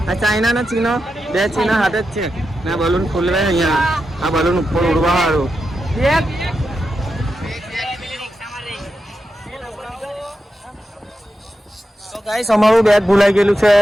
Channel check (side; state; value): both; normal; correlation 0.88